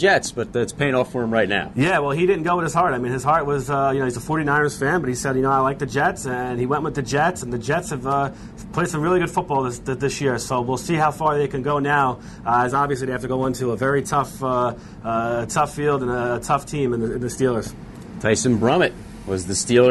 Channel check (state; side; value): identical; both; correlation 1.00